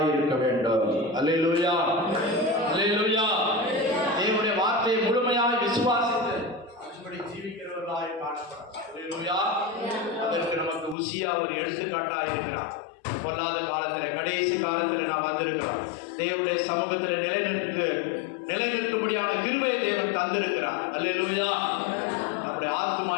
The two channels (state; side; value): drops out; right; at 11.0 s